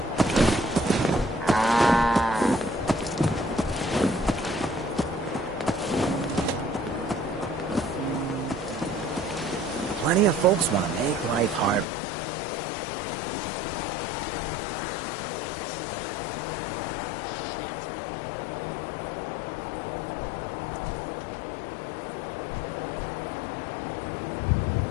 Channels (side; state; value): right; drops out; at 11.9 s